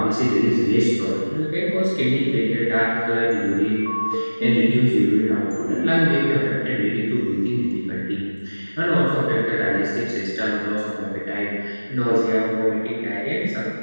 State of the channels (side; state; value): both; inverted; correlation -1.00